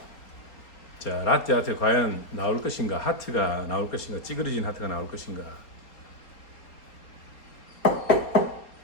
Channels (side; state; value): right; late; 4.3 ms